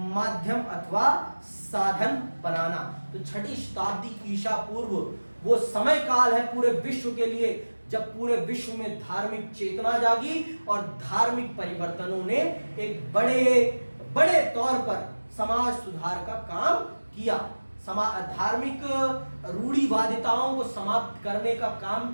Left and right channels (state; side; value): inverted; both; correlation -1.00